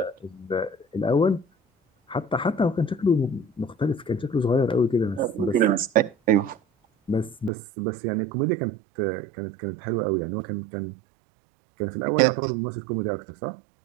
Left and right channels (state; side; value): drops out; left; at 7.5 s